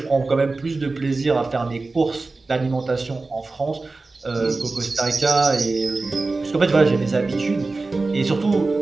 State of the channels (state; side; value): quieter; left; 3.6 dB